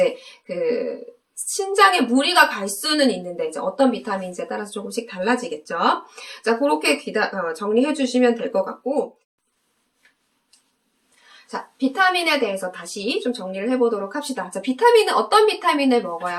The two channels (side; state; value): both; identical; correlation 1.00